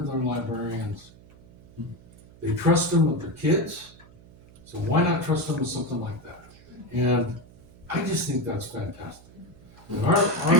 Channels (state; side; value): noise; right; hum, 23 dB below the sound